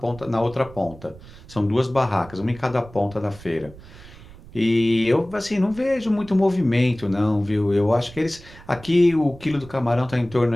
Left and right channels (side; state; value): right; noise; rumble, 19 dB below the sound